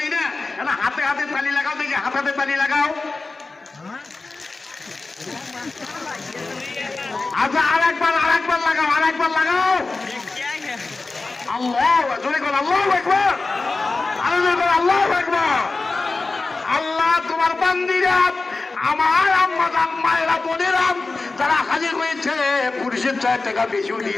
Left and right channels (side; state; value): right; quieter; 3.6 dB